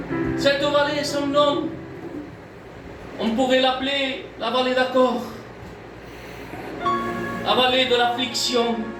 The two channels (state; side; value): identical; both; correlation 1.00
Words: Cette vallée, son nom, on pourrait l'appeler la vallée d'accord, la vallée de l'affliction,